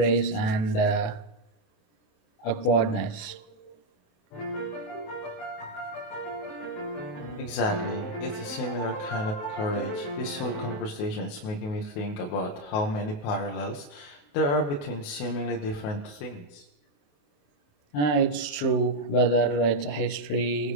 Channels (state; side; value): late; right; 27 ms